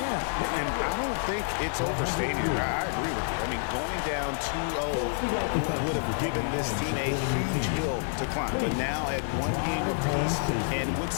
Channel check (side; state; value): right; silent; digital silence